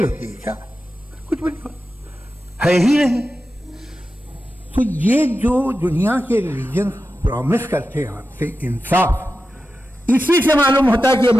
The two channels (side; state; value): both; normal; correlation 0.91